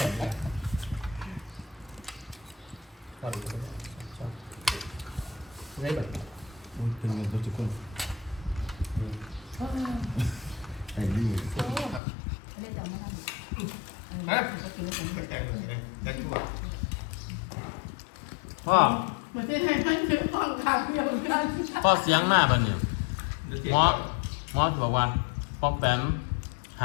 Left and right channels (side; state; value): right; drops out; at 12.0 s